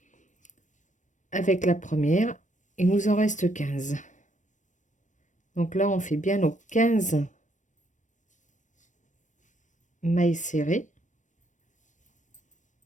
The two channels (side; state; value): right; late; 0.36 ms